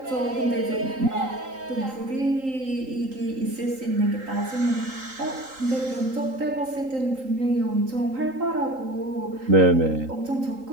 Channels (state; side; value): late; left; 3.8 ms